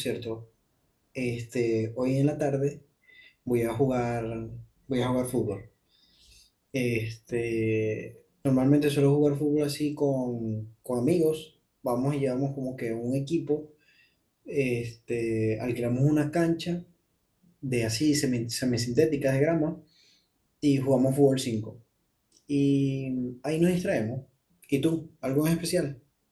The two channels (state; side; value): identical; both; correlation 1.00